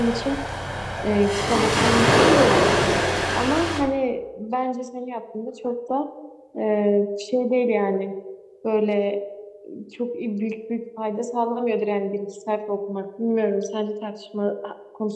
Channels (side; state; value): both; identical; correlation 1.00